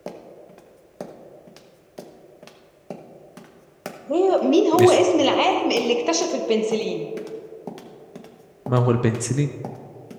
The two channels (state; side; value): identical; both; correlation 1.00